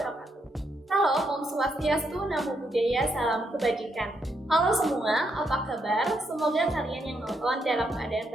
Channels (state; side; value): normal; both; correlation 0.78